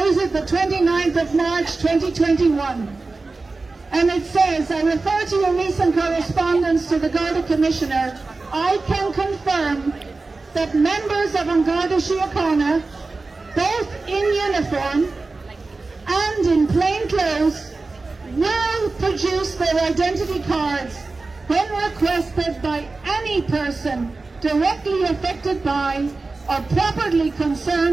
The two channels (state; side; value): quieter; left; 3.6 dB